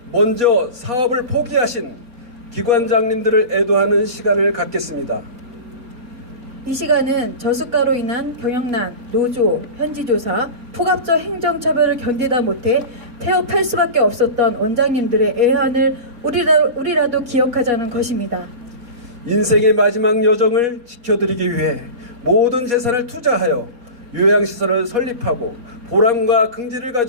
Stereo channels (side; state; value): left; late; 4.2 ms